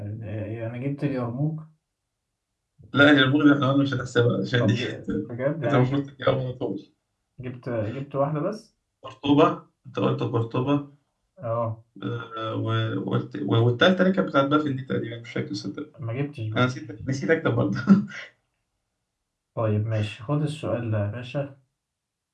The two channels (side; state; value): both; identical; correlation 1.00